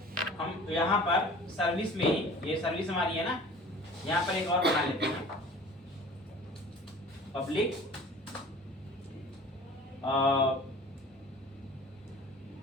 हम यहाँ पर सर्विस में ही, ये सर्विस हमारी है ना, यहाँ पर एक और बना लेते हैं, public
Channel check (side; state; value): both; normal; correlation 0.45